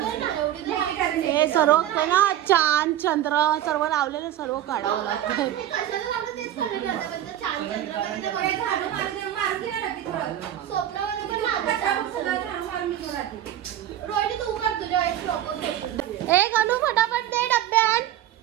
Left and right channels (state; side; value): quieter; left; 11.9 dB